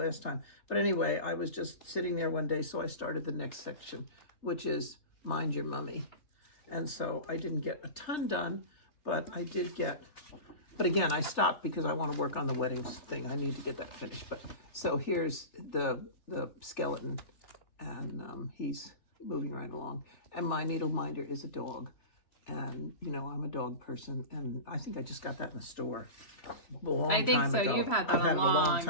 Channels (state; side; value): late; right; 3.4 ms